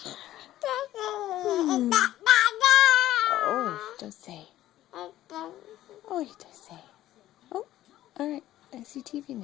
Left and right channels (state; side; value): quieter; right; 14.0 dB